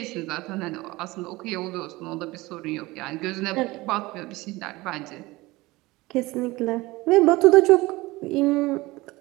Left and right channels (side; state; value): left; quieter; 20.8 dB